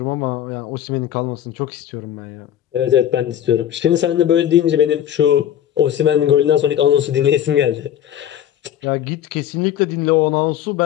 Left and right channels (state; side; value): quieter; right; 10.6 dB